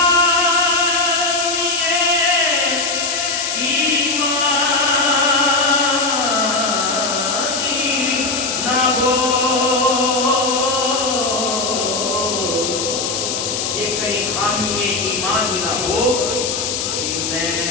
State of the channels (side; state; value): left; noise; hiss, 2 dB below the sound